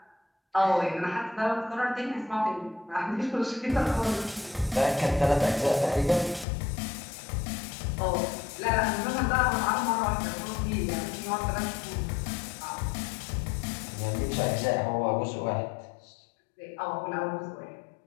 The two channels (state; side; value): drops out; right; at 6.5 s